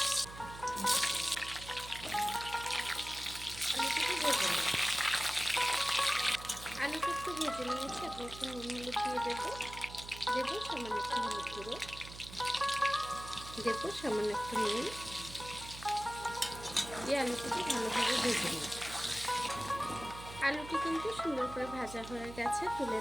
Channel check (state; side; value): noise; right; hum, 14 dB below the sound